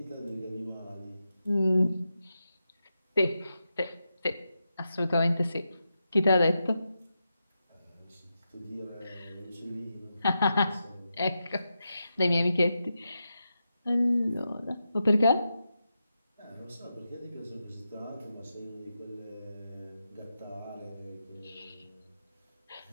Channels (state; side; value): inverted; both; correlation -0.88